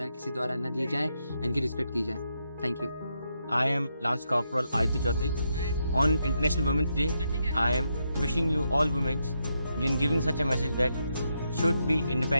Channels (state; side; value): inverted; both; correlation -0.82